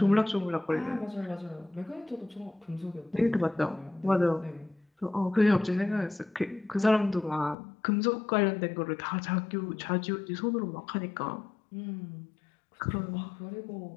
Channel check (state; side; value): drops out; right; at 7.6 s